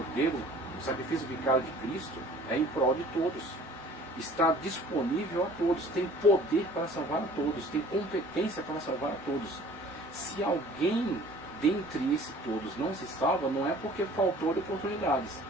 o sacrifício vicário de Cristo, é em prol de todos. Está disponível a todos, tem poder para salvar a todos, tem competência para salvar a todos. Se alguém dentre esses todos não se salva, não é porque faltou de oportunidades,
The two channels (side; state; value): both; normal; correlation 0.50